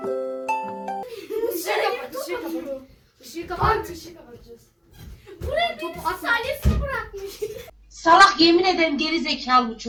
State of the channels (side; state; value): both; identical; correlation 1.00